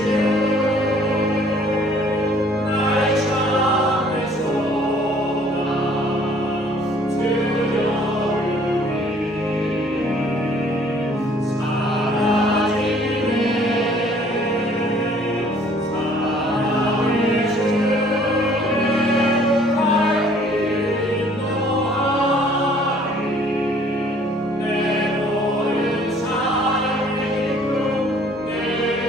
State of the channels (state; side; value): normal; both; correlation 0.57